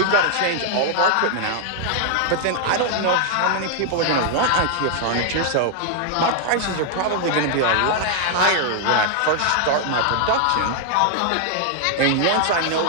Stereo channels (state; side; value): different; both; correlation 0.00